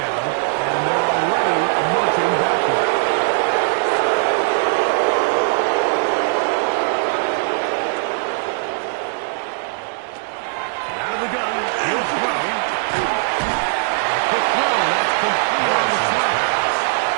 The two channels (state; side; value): silent; left; 66 dB below the other